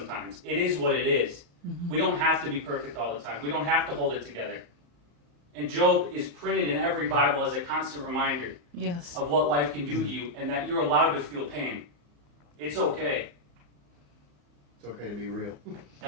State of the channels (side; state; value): left; late; 34 ms